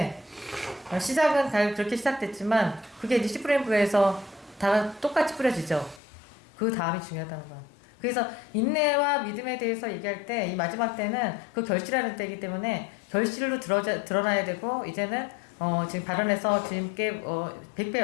시작은 그렇게 시작됐지만 그게 이제 씨 뿌리는 부에서 다 똑같이 뿌려지죠. 그 다음이 중요하다는 거야. 그래서 인내와 믿음에 대해서 얘기할 때 이 마지막 때는 그 결실하는 때이기 때문에 결실로 드러나야 되고, 이제는 지금 발언해서 주님께 100배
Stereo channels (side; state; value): right; drops out; at 6.0 s